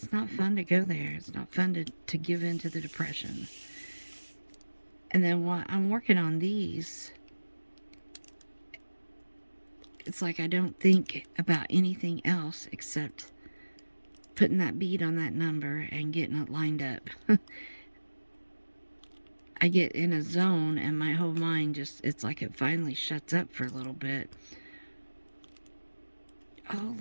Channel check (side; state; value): both; inverted; correlation -1.00